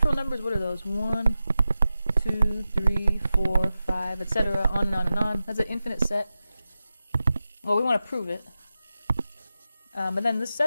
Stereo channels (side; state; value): both; inverted; correlation -0.92